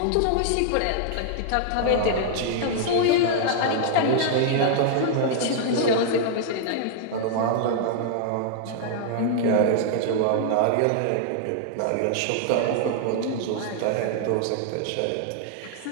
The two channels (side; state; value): both; different; correlation -0.01